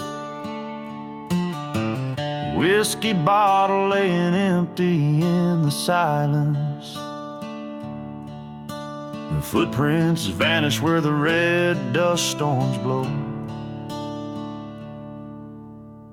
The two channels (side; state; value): both; identical; correlation 1.00